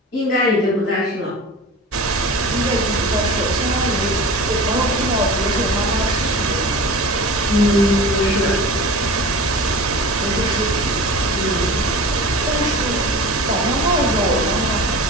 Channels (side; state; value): both; normal; correlation 0.35